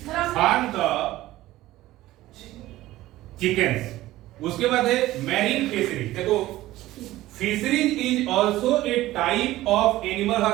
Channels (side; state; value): left; quieter; 16.2 dB